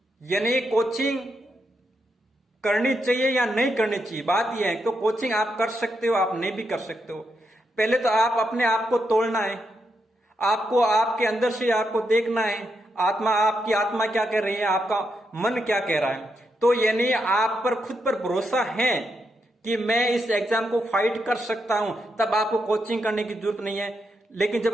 यानी कोचिंग करनी चाहिए या नहीं करनी चाहिए, बात यह है। तो कोचिंग आप कर सकते हो, आप नहीं भी कर सकते हो। पहले तो आप अपने आप को तोड़ना है, आपको आपके अंदर से आपको देखना है, आपकी आत्मा क्या कह रही है, आपका मन क्या कह रहा है। तो यानी आप पर खुद पर भरोसा है कि मैं इस एग्जाम को फाइट कर सकता हूं, तब आपको कोचिंग करने की जरूरत नहीं है। लेकिन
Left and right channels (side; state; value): both; normal; correlation 0.83